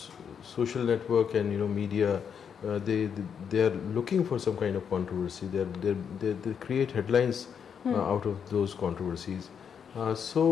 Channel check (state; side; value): quieter; right; 7.4 dB